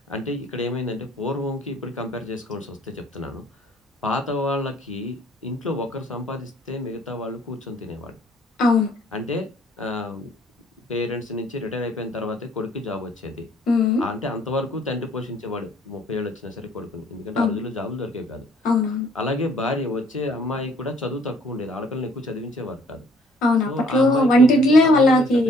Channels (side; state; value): both; normal; correlation 0.60